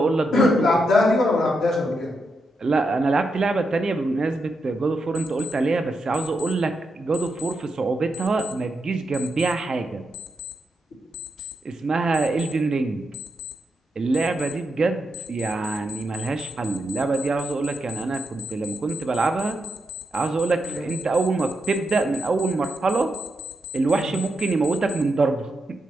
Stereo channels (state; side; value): normal; both; correlation 0.83